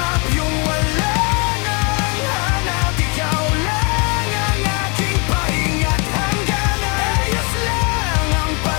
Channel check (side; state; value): right; quieter; 32.4 dB